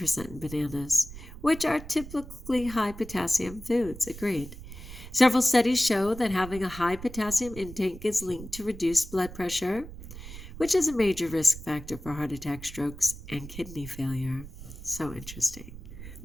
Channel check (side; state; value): right; noise; rumble, 13 dB below the sound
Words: in bananas, which are typically high potassium foods. Agreed. Several studies show that having a high potassium intake is linked to reduced blood pressure, which is a major risk factor for heart attack, strokes, and kidney failure. So interesting.